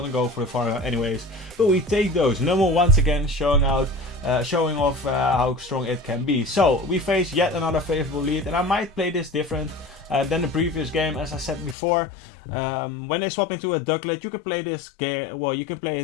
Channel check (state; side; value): drops out; right; at 11.8 s